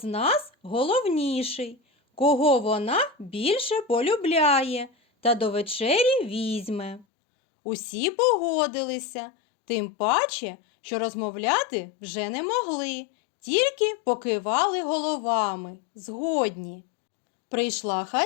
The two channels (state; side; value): drops out; right; at 7.1 s